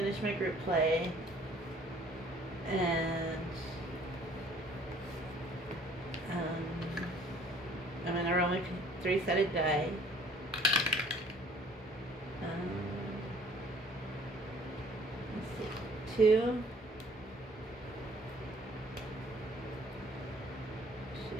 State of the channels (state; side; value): normal; both; correlation 0.55